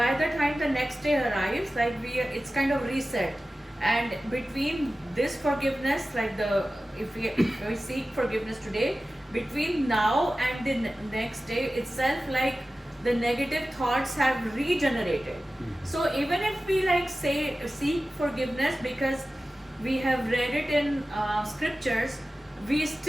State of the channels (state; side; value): normal; both; correlation 0.95